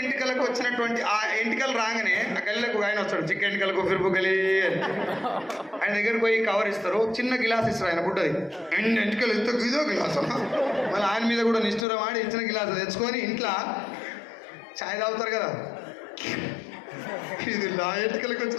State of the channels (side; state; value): right; drops out; at 11.9 s